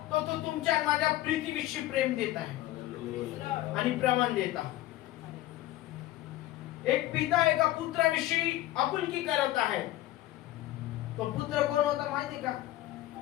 तो तुमच्या आणि माझ्या प्रीतीविषयी प्रेम देत आहे आणि प्रमाण देत आहे. एक पिता एका पुत्राविषयी आपुलकी करत आहे. तो पुत्र कोण होता माहिती का?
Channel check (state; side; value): quieter; right; 15.4 dB